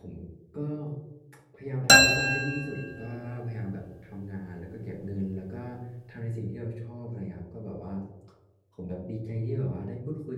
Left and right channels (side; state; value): both; identical; correlation 1.00